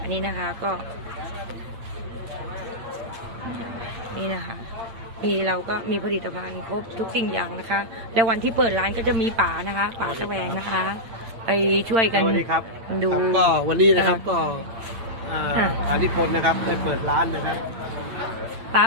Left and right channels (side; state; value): left; late; 8.8 ms